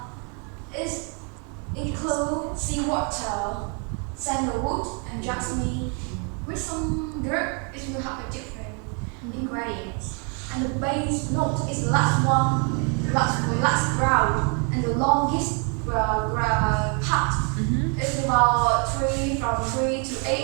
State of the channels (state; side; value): quieter; left; 37.4 dB